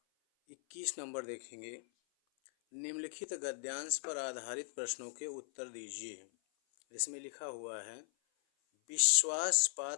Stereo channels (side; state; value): right; silent; 52 dB below the other